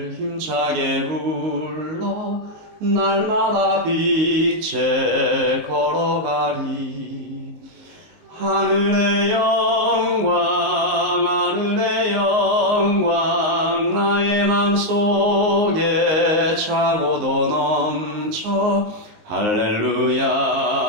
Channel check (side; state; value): left; late; 19 ms